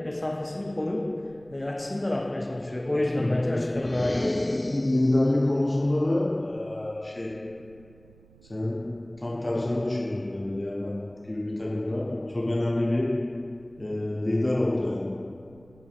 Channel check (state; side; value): noise; right; rumble, 25 dB below the sound